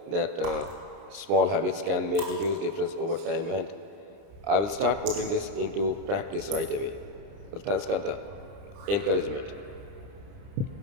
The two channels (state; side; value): late; left; 30 ms